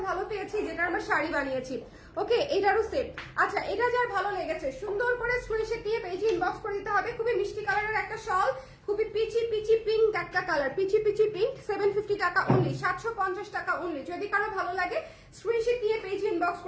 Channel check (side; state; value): both; identical; correlation 1.00